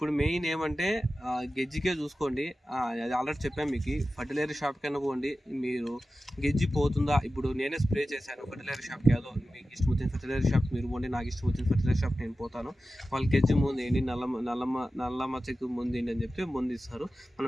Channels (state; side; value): normal; both; correlation 0.94